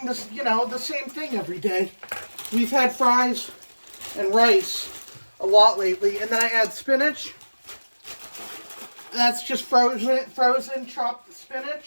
this, the same thing every day. We've had fries and rice a lot lately, and then I add spinach. That's just frozen chopped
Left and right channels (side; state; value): both; inverted; correlation -1.00